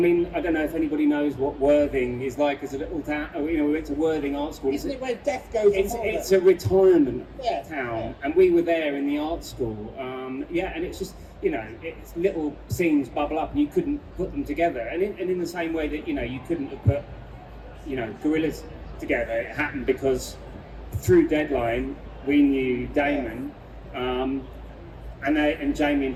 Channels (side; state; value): both; identical; correlation 1.00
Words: I don't know if anybody knows what Worthing is like as a little town. We went to Worthing Art School. Isn't it where death goes? It's a retirement town, Yeah. and we were there in the art school. And it's just it's little scenes bubble up, and you couldn't put them together. And in the same way that you couldn't have put Gorillaz together, it happened because through Deadline we knew Damon. And Jamie and